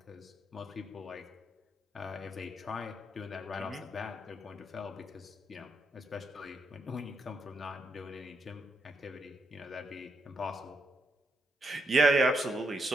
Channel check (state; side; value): normal; both; correlation 0.79